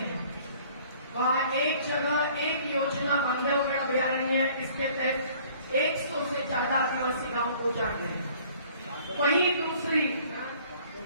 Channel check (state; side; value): inverted; both; correlation -0.54